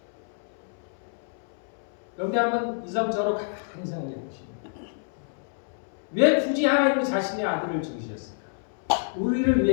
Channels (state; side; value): silent; right; 59 dB below the other